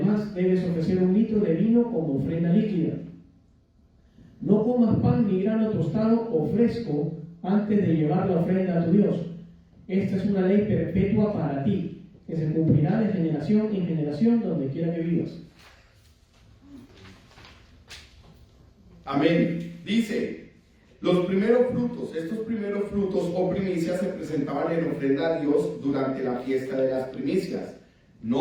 debes ofrecer 1 litro de vino como ofrenda líquida. No comas pan ni grano tostado o fresco antes de llevar la ofrenda a tu Dios. Esta es una ley perpetua para ti, que se cumplirá de generación en generación donde quiera que vivas. Amén. Dice, Los primeros frutos, estos primeros frutos o primicias se presentaban en ofrenda a Dios durante la fiesta de las primicias.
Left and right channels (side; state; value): both; identical; correlation 1.00